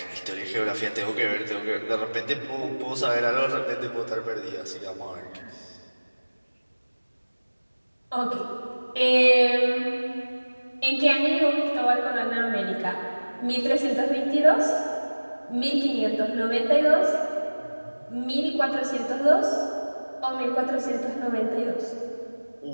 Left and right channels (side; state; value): both; inverted; correlation -1.00